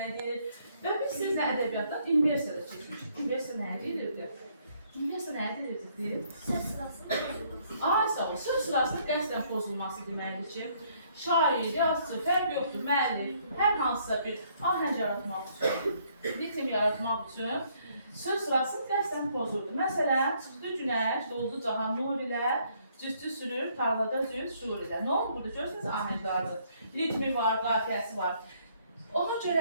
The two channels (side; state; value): both; inverted; correlation -0.67